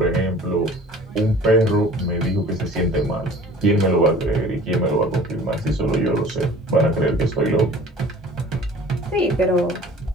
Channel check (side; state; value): both; normal; correlation 0.46